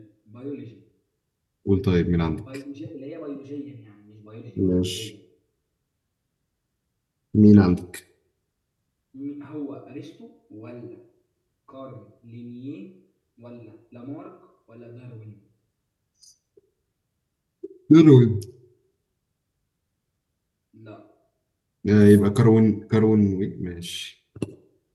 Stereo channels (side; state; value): both; identical; correlation 1.00